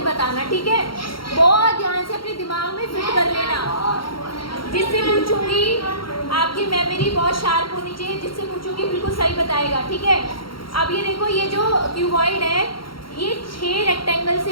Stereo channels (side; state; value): right; late; 0.73 ms